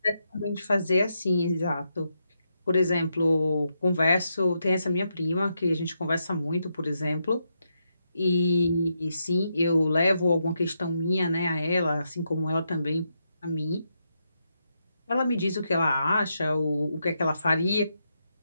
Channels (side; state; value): both; inverted; correlation -0.83